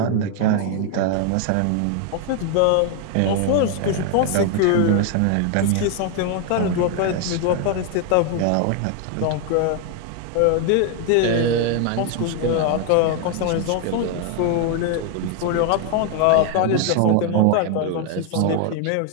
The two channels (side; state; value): both; different; correlation 0.00